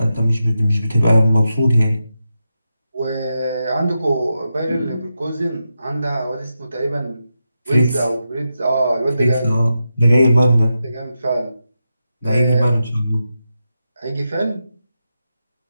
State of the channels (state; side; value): inverted; both; correlation -0.88